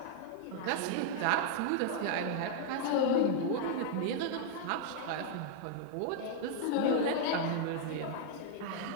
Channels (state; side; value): different; both; correlation -0.01